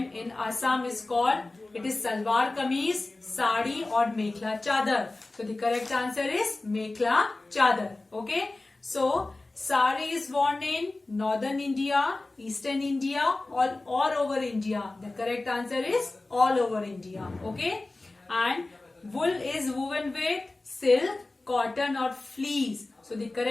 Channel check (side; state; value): right; quieter; 3.1 dB